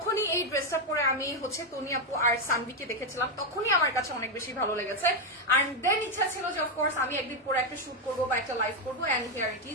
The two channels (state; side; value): normal; both; correlation 0.05